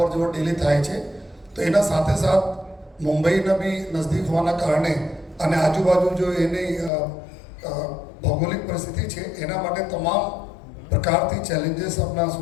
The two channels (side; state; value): right; drops out; at 6.9 s